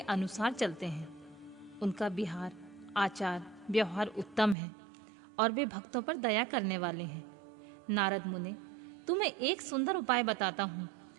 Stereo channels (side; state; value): left; drops out; at 4.5 s